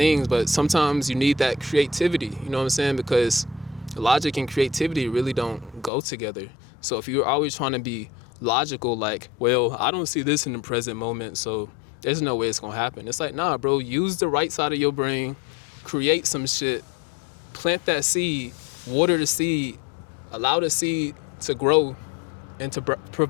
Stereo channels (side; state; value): right; drops out; at 5.9 s